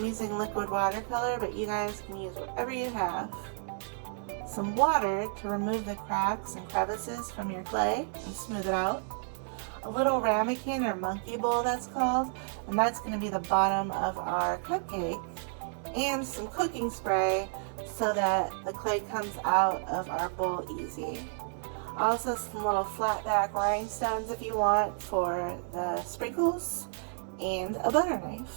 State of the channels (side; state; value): left; silent; 57 dB below the other